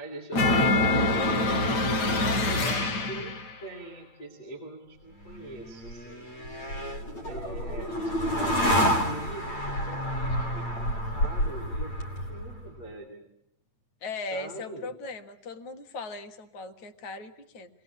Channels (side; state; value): right; late; 8.8 ms